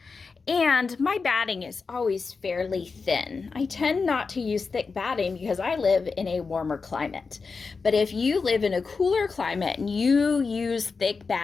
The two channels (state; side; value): quieter; right; 4.7 dB